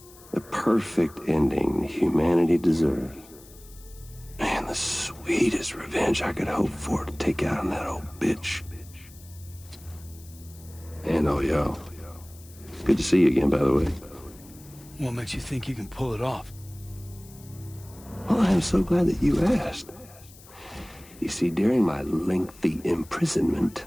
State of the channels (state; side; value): noise; left; hiss, 22 dB below the sound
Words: The perfect ending humanity deserves. Man, the sweetest revenge I could hope for to take out on that old bitch. And all y'all. Good to see you again, by the way. What makes you think you can pull it off? Well, I'm so glad that you asked. You see, during my lengthy imprisonment,